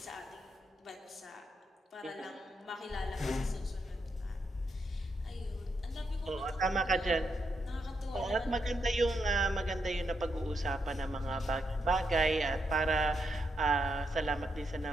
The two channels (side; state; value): both; normal; correlation 0.81